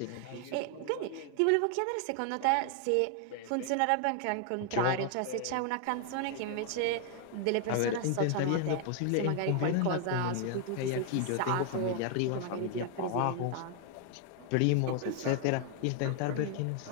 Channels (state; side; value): different; both; correlation 0.00